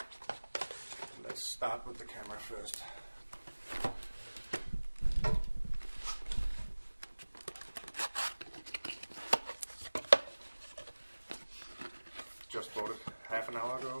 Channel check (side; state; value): both; inverted; correlation -1.00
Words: Let's start with the camera first. Just bought it half an hour ago,